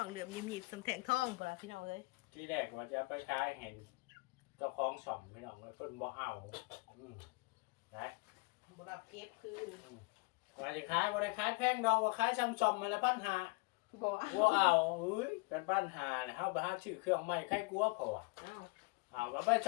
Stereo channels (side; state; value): right; quieter; 27.6 dB